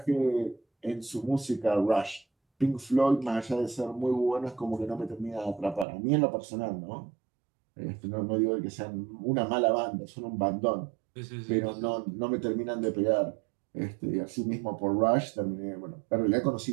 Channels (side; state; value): left; drops out; at 5.9 s